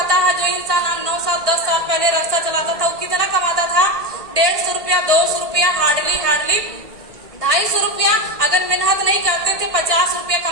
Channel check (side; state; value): left; late; 1.6 ms